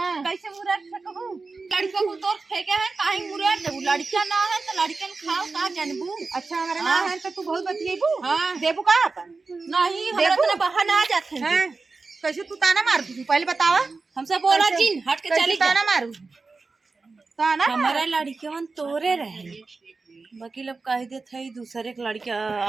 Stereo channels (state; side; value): quieter; left; 4.1 dB